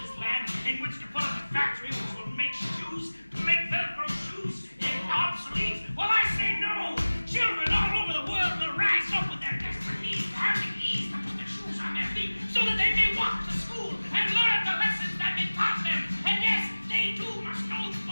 this land in which to put up a factory which will make shoes, make Velcro shoes obsolete? Well, I say no! Children all over the world will rise up with their desperate needs to have the ease to put their shoes on their feet so that they may walk to school and learn the lessons that have been taught them. And yes, they too must know the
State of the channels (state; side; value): inverted; both; correlation -1.00